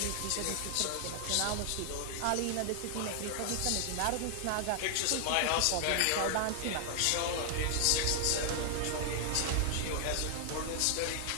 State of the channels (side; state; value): both; different; correlation 0.00